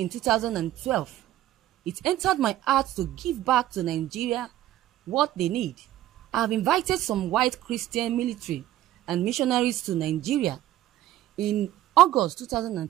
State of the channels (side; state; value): left; quieter; 13.9 dB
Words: 2012, it entered my heart to give back to Nigeria what they need. I have invited some white Christian military and missionaries to Nigeria in August